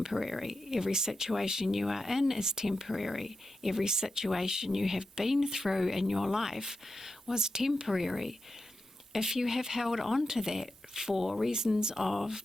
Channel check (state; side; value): normal; both; correlation 0.89